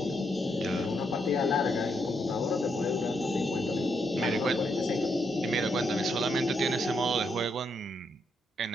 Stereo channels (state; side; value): normal; both; correlation 0.78